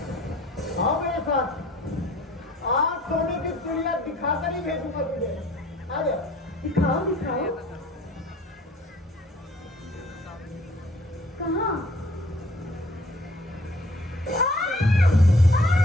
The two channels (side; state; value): both; normal; correlation 0.54